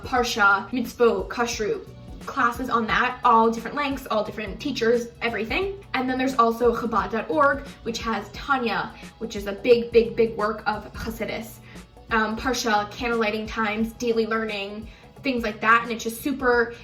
Parsha, Mitzvot, Kashrut, classes on that, all different lengths, all different teachers, everything. And then there's also Chabad.org, which has Tanya, which is a big work of Hasidus. Parsha, candlelighting times, daily learning, things like that. And it's just super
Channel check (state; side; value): identical; both; correlation 1.00